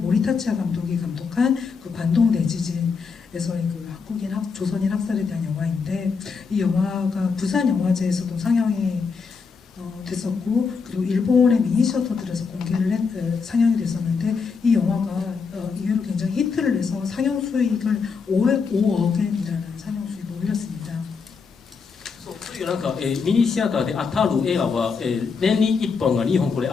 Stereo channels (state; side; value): quieter; right; 5.3 dB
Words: 감독이 감독한 그 관동 대지진에서의 그 한국인 조선인 학살에 대한 영화인데, 이 영화가 부산 영화제에서도 상영이 됐었고, 그리고 일본의 미니시어터들에서 상영이 됐었는데, 이 영화가 이후로 굉장히 히트를 내서 상영 수익을 5억엔이라는 상영 수익을 올렸습니다. そういうなんか、ミニシアターで当たる映画は、年に1本が2本これ